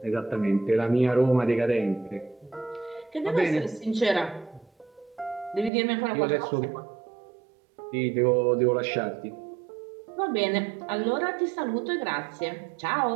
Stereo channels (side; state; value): left; drops out; at 5.7 s